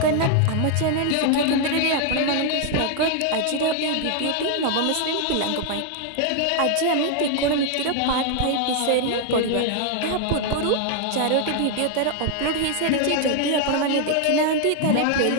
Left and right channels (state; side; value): different; both; correlation 0.00